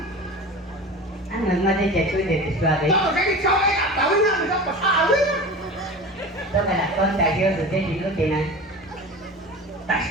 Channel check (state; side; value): normal; both; correlation 0.33